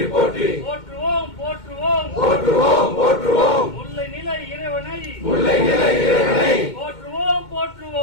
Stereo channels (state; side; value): late; right; 2.2 ms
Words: போற்றி போற்றுவோம் போற்றுவோம் போற்றுவோம் போற்றுவோம் முல்லை நிலை இறைவனை முல்லை நிலை இறைவனை போற்றுவோம்